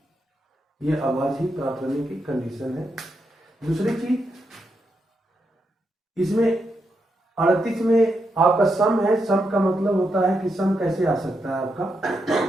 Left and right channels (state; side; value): normal; both; correlation 0.83